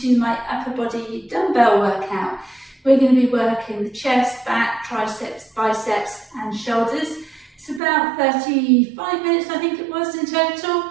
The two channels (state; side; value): drops out; left; at 7.8 s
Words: my upper body dumbbell workout. We're going to be working the chest, back, triceps, biceps and shoulders. It's about 35 minutes, I think it was in total.